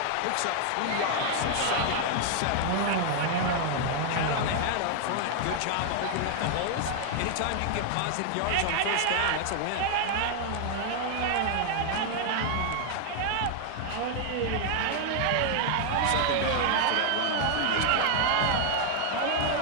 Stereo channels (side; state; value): both; different; correlation 0.00